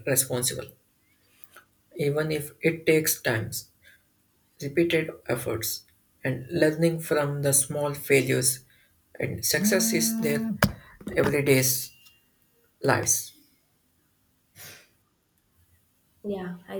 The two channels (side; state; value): both; identical; correlation 1.00